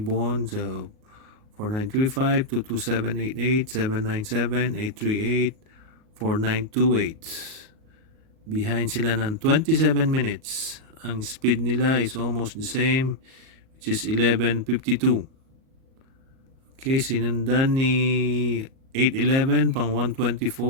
So 4935, 22788, 797, 838, 4928. Behind sila ng 27 minutes. Ang speed nila is almost the same, which is 11:52. Okay, sinundan ni 811 pang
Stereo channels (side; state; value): left; late; 38 ms